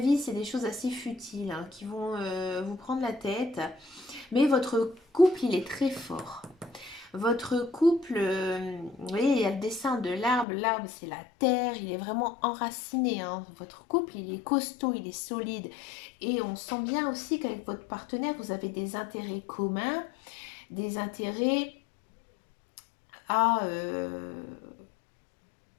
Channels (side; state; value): right; drops out; at 10.5 s